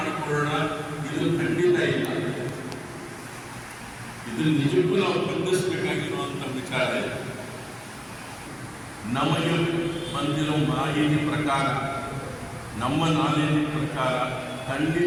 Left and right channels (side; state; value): both; identical; correlation 1.00